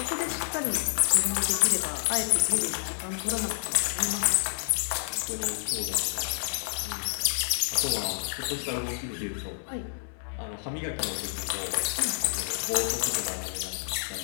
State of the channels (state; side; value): silent; right; 59 dB below the other